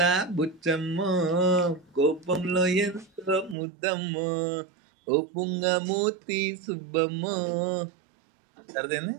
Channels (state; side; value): drops out; left; at 3.6 s